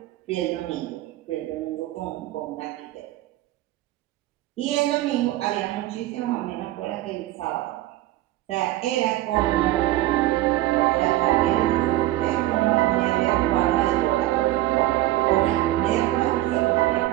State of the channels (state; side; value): quieter; left; 16.0 dB